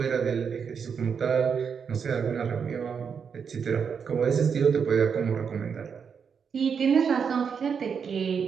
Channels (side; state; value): left; quieter; 6.6 dB